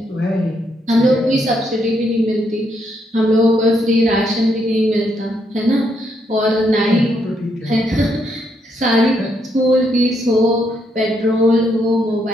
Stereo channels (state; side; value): normal; both; correlation 0.76